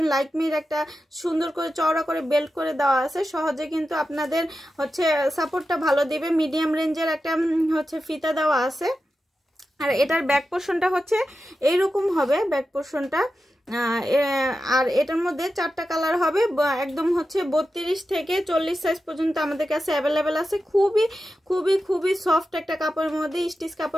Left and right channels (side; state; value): both; normal; correlation 0.91